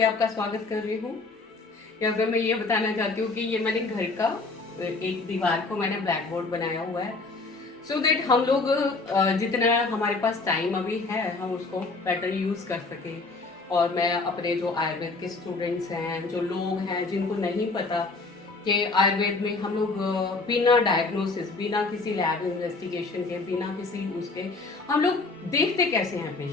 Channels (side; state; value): right; quieter; 3.7 dB